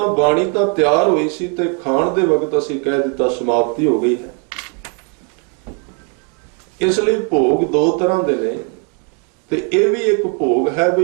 बाणी तो तैयार हुई सी ते खाण दे वक्त असी कह दिता समाप्ति हो गई है। इसलिए भोग दो तरह दे ने ते ये भी एक भोग है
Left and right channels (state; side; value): quieter; left; 38.8 dB